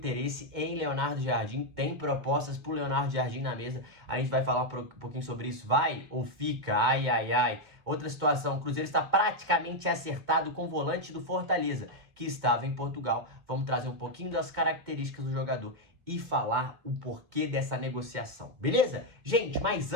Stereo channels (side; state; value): left; late; 2.2 ms